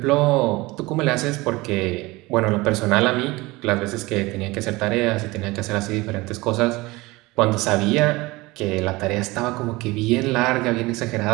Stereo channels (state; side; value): quieter; left; 21.6 dB